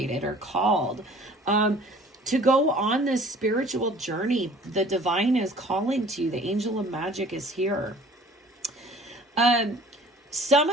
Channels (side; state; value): both; normal; correlation 0.50